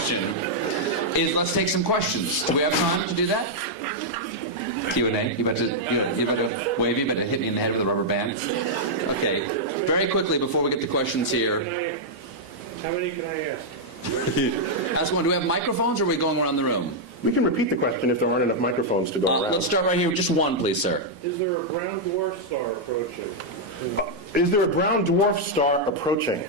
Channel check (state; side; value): late; left; 1.5 ms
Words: is, let's take some questions. Do we have time to do that? Q&A? You about to wave? You about to hit me in the head with a rubber band? Okay. Very quickly, before we get the questions here. How many can I ask? Ask one. Do we have microphones, or are we going around the room? We can repeat the question if there aren't enough microphones to go around. Let's start right here with just one, please, sir. Is there a brown dwarf star approaching? Is there a brown dwarf star approaching?